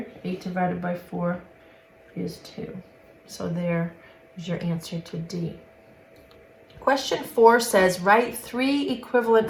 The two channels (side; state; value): both; identical; correlation 1.00